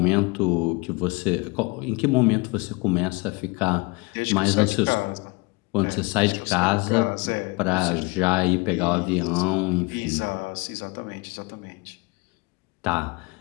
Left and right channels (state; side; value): quieter; right; 27.0 dB